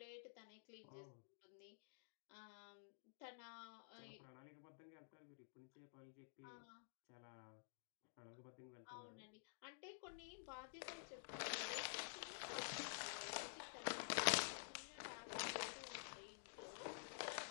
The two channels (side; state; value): right; silent; digital silence